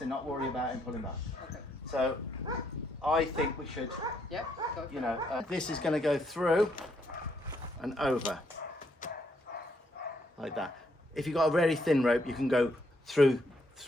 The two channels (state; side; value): normal; both; correlation 0.74